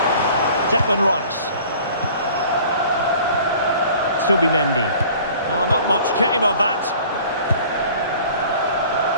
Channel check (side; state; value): both; inverted; correlation -0.48